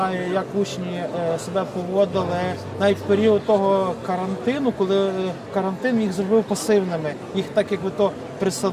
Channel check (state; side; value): identical; both; correlation 1.00